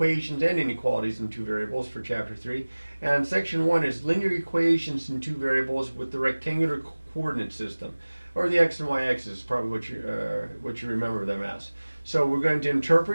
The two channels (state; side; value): inverted; both; correlation -1.00